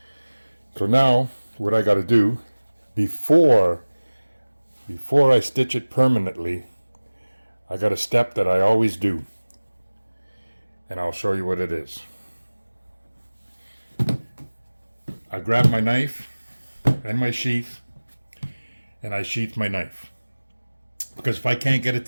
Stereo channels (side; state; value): both; inverted; correlation -1.00